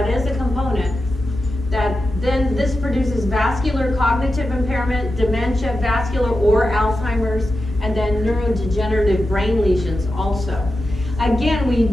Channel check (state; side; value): normal; both; correlation 0.90